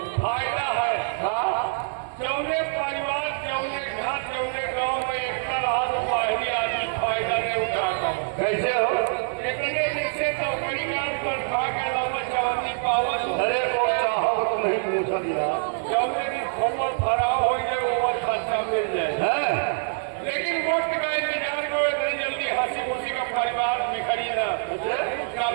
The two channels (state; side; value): silent; left; digital silence